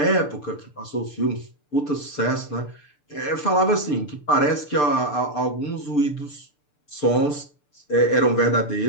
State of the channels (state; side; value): late; right; 6.8 ms